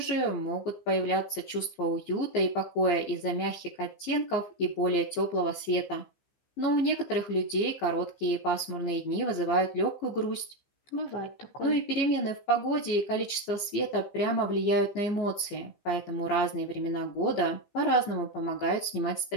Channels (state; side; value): late; right; 15 ms